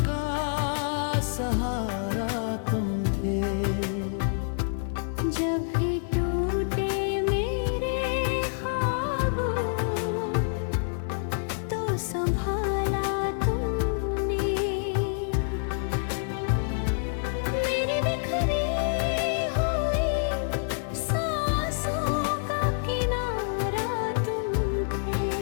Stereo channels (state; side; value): silent; right; 56 dB below the other